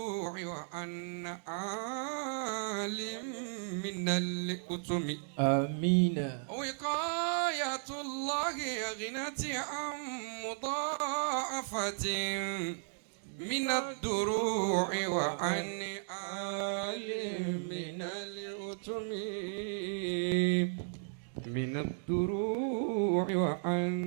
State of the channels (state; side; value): silent; left; digital silence